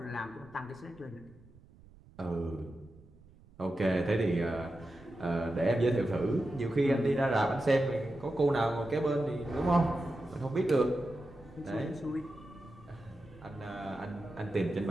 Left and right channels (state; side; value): noise; right; rumble, 24 dB below the sound